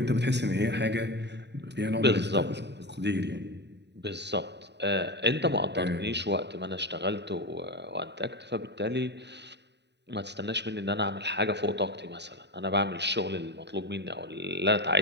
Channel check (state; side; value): late; left; 0.50 ms